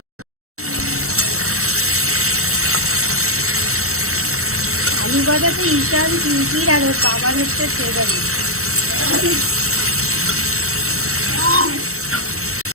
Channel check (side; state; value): left; late; 0.64 ms